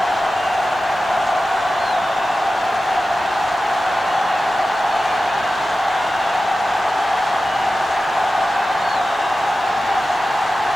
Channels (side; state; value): right; noise; hiss, 30 dB below the sound